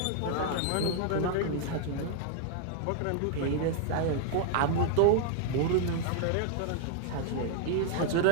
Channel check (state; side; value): different; both; correlation 0.00